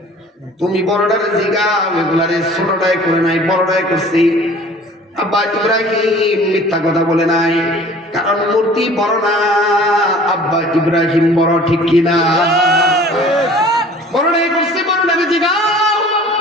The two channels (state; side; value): normal; both; correlation 0.48